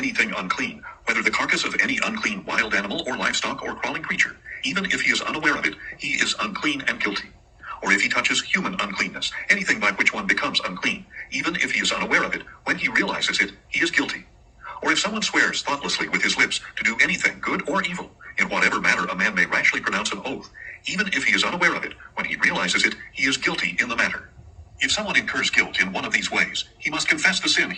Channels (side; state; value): both; identical; correlation 1.00